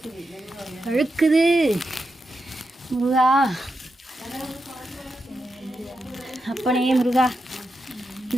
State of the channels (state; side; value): normal; both; correlation 0.87